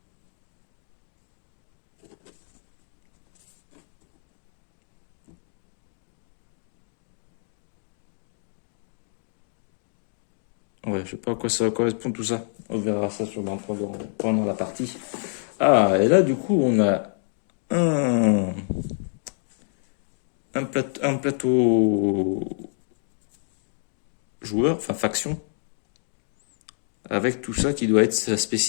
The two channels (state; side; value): silent; right; digital silence